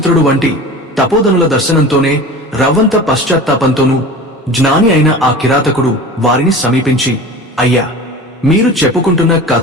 వంటి తపోధనుల దర్శనంతోనే రవ్వంత పశ్చాత్తాపంతోనూ జ్ఞాని అయిన ఆ కిరాతకుడు వారిని సమీపించి, అయ్యా, మీరు చెప్పుకుంటున్న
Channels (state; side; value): normal; both; correlation 0.36